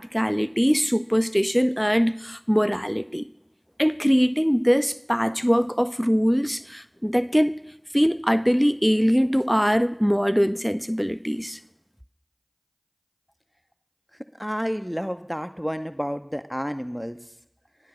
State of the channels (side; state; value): both; identical; correlation 1.00